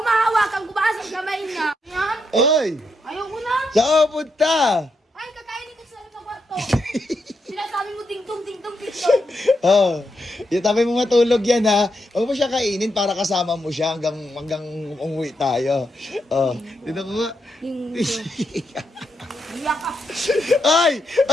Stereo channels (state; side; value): normal; both; correlation 0.82